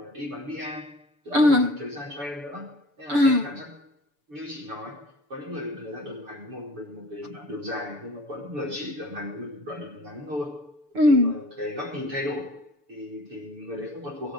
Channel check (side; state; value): left; late; 6.9 ms